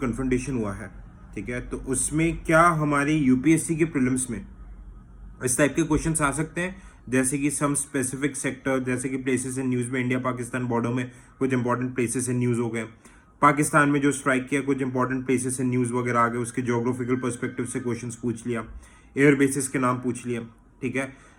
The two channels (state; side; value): identical; both; correlation 1.00